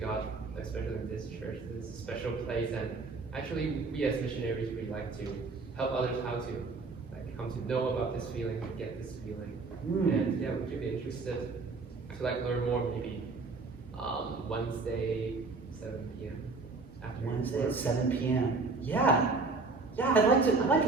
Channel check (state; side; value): quieter; left; 4.0 dB